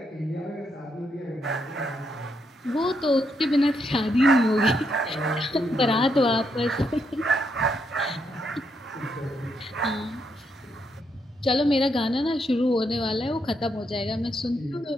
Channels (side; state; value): both; normal; correlation 0.78